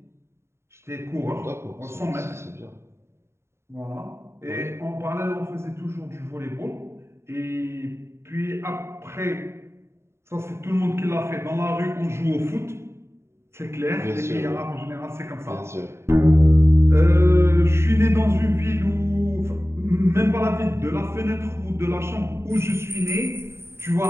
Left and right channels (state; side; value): late; left; 0.13 ms